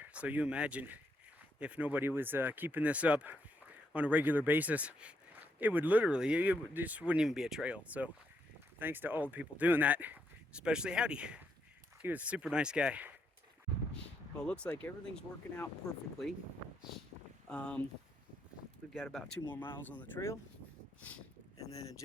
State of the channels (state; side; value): normal; both; correlation 0.77